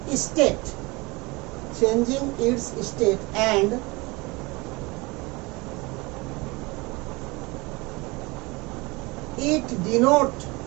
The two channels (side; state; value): left; quieter; 24.7 dB